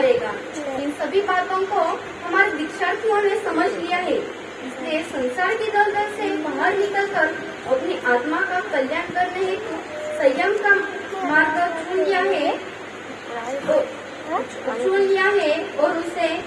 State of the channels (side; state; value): both; identical; correlation 1.00